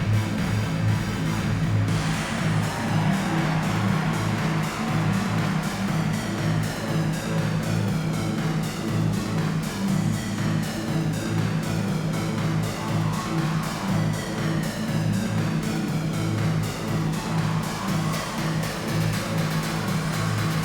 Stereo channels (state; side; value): identical; both; correlation 1.00